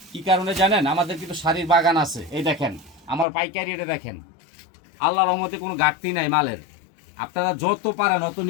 কি কারণে জানেন? আমাদের কিন্তু শাড়ির বাগান আছে। এই দেখেন আমার পাইকারি, এটা দেখেন, আল্লাহর রহমতে কোনো ঘাটতি নাই মালের। আপনারা যত পারেন অত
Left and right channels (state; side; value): drops out; right; at 3.2 s